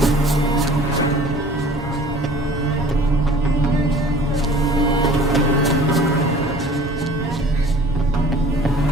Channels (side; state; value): both; normal; correlation 0.48